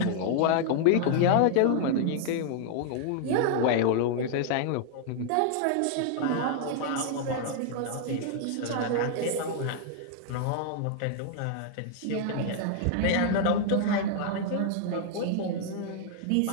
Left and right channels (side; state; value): both; different; correlation 0.00